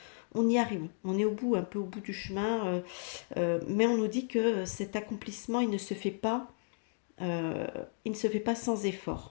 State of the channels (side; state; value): right; silent; digital silence